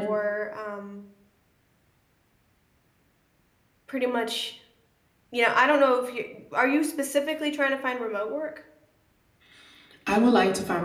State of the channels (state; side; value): identical; both; correlation 1.00